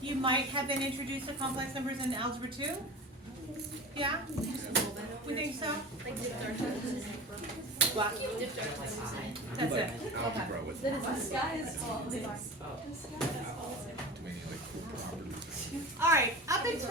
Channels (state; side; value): normal; both; correlation 0.32